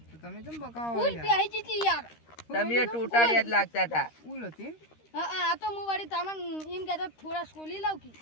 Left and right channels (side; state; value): right; late; 13 ms